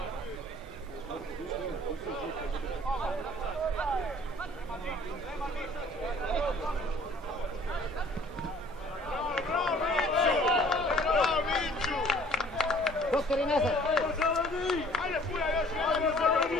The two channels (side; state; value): both; normal; correlation 0.54